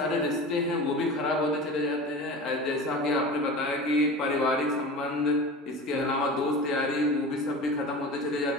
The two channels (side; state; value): both; normal; correlation 0.33